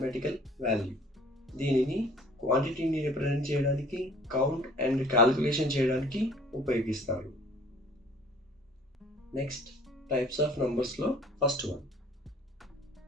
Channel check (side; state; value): both; normal; correlation 0.52